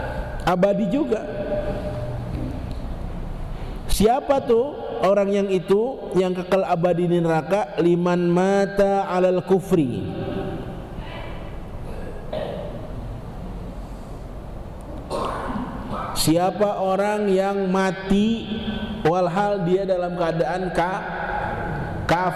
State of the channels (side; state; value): both; identical; correlation 1.00